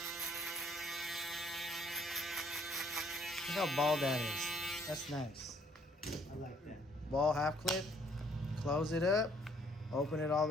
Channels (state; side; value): normal; both; correlation 0.64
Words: Look how bald that is. That's nice. I like that. Ball half clip. Close it up. Open it all